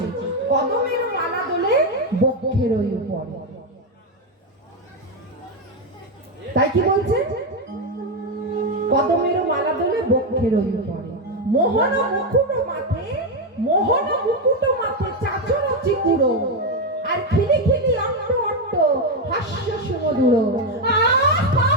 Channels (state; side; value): normal; both; correlation 0.07